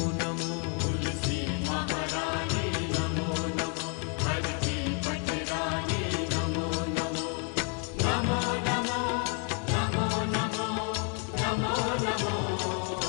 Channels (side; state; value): right; quieter; 37.1 dB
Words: नमो। तुलसी महारानी नमो नमो, हर की पटरानी नमो नमो। नमो नमो नमो नमो नमो नमो।